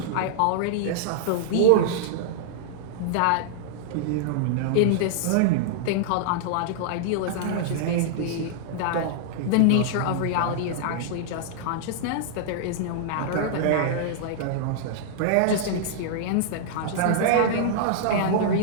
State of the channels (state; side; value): different; both; correlation -0.01